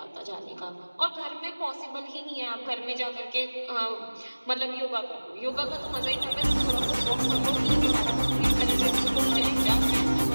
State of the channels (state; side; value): inverted; both; correlation -1.00